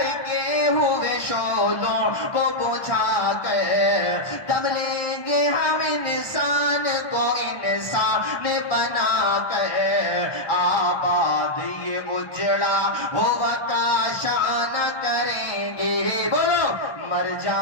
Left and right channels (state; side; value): late; right; 1.2 ms